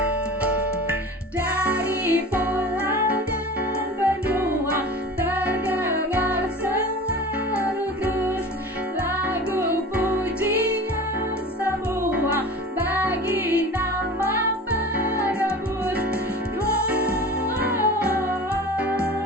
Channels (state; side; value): normal; both; correlation 0.37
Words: Dari pulau dan benua terdengar selalu terus lagu pujian semua bagi nama penebus. Gloria